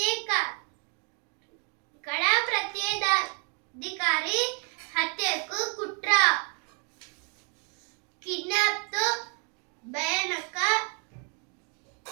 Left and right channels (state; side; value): quieter; left; 38.3 dB